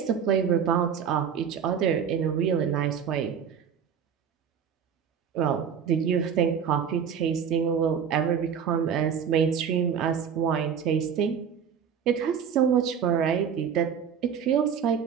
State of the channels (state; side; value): quieter; left; 7.6 dB